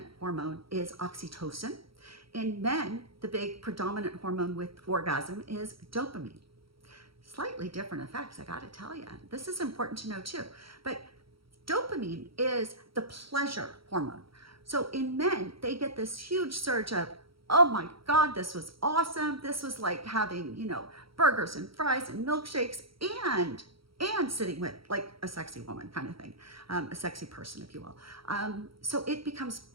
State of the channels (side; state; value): left; late; 0.75 ms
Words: hormone is oxytocin. In men, the big predominant hormone with orgasm is dopamine. Slightly different effects, I gotta tell you. This is important to know too. But dopamine is the pleasure hormone. So in men, they get this huge surge of, oh my God, this was awesome. This was like having, burgers and fries and milkshakes and sitting with like a sexy woman kind of thing, a sexy person, if you will. So it becomes